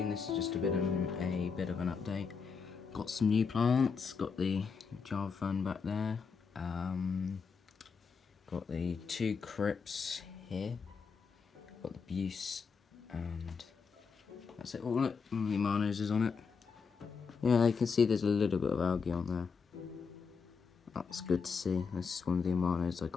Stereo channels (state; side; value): quieter; right; 5.5 dB